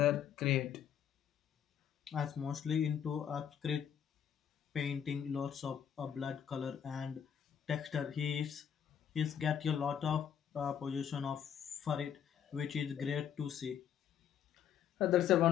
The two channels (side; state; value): right; quieter; 8.8 dB